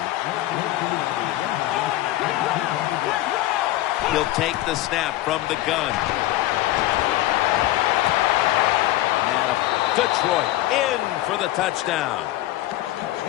He'll take the snap from the gun. Detroit in for the touchdown.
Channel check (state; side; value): quieter; right; 15.9 dB